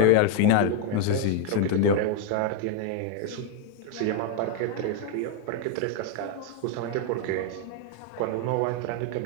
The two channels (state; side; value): different; both; correlation 0.00